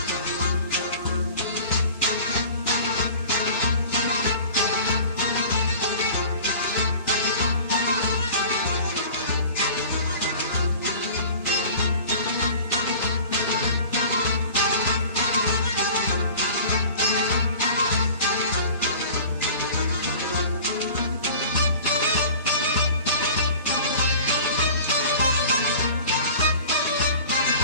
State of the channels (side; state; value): both; inverted; correlation -0.42